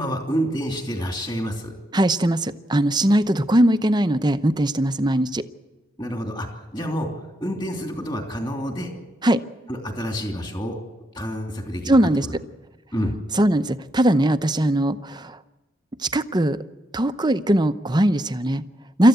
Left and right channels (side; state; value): both; normal; correlation 0.81